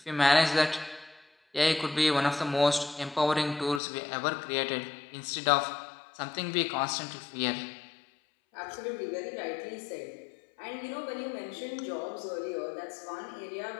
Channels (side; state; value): right; drops out; at 3.8 s